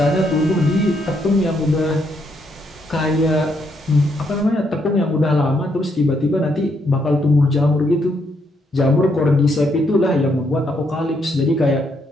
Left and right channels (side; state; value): both; normal; correlation 0.75